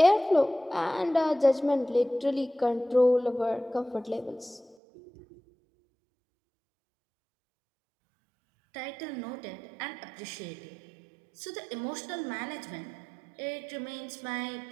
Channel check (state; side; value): drops out; left; at 4.8 s